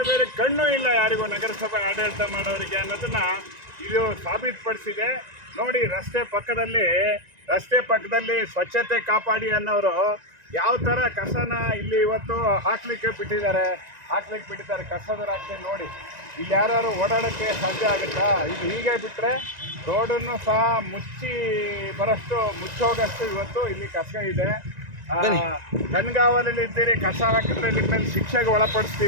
ಕಣ್ಣು ಇಲ್ಲ ಯಾರಿಗೂ, ನಗರಸಭೆ ಆಡಳಿತ ಮಾಡೋರಿಗೆ ಅನ್ನೋದನ್ನ ಇದು ಸಾಬೀತುಪಡಿಸಿದೆ. ನೋಡಿ, ರಸ್ತೆ ಪಕ್ಕದಲ್ಲಿ ಸ್ವಚ್ಛತೆ ಕಾಪಾಡಿ ಅನ್ನೋರು ಯಾವ ಥರ ಕಸನ ಇಲ್ಲಿ ಇವತ್ತು ಹಾಕ್ಲಿಕ್ಕೆ ಬಿಟ್ಟಿದ್ದಾರೆ ಕಸದ ರಾಶಿ ನೋಡಿ. ಇಲ್ಲಿ ಯಾರು ಓಡಾಡೋಕ್ಕೆ ಸಾಧ್ಯ ಆಗುತ್ತಾ? ಇದು ಹೀಗೆ ಬಿಟ್ಟರೆ ರೋಡನ್ನು ಸಹ ಮುಚ್ಚೋಗಷ್ಟು ಇವತ್ತು ಇಲ್ಲಿ ಕಸ ಇದೆ. ಕಣ್ಗಾವಲಲ್ಲಿ ಇದ್ದೀರಿ, ಕಸ ಹಾಕಿದ್ರೆ ನಿಮ್ಮ ಮೇಲೆ ಶಿಕ್ಷೆಗೆ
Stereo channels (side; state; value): left; late; 1.9 ms